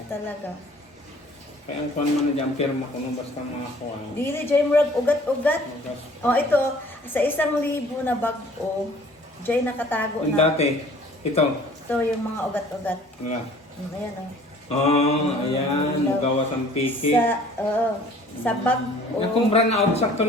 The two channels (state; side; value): normal; both; correlation 0.52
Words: talaga. Kaya ang kuhan mo na dyan, pirma ko nung basta mga kuhan. Dili, Jay Murag, ugat-ugat. O, ito, sa 1,000 na bag-o, Jay nakatago Yung na. dati, ito. Ito yung mga ugat-ugat. Wala. Ayan, o. Ayan, gawas ang piki. Sa bag-o. Nakumbra na out, sakto